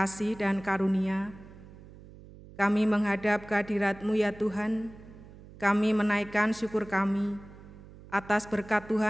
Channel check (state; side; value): noise; right; hum, 19 dB below the sound